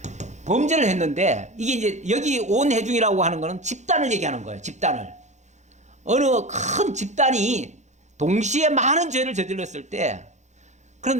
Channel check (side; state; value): left; late; 0.34 ms